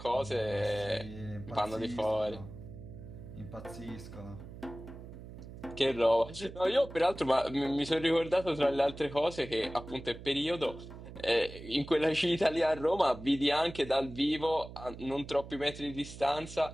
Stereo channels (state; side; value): noise; right; hum, 14 dB below the sound